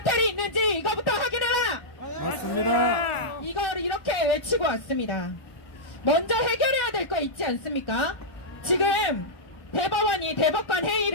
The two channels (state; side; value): late; right; 1.4 ms